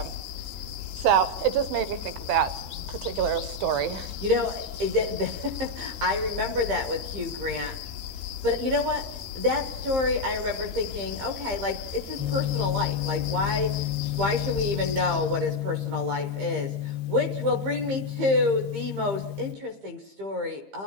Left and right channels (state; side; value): late; left; 15 ms